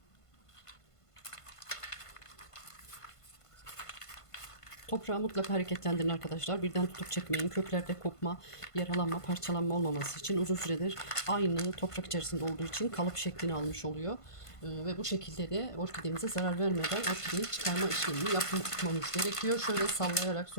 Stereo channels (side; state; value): right; late; 1.5 ms